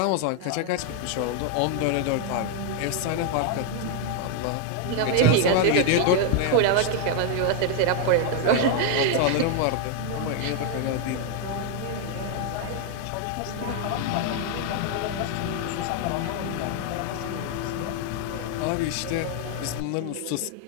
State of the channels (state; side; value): different; both; correlation 0.01